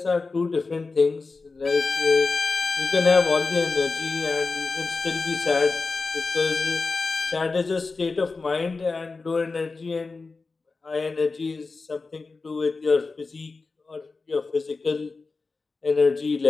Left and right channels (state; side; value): quieter; right; 4.0 dB